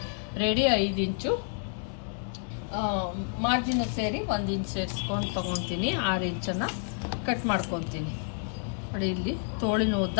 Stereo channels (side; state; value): right; silent; 58 dB below the other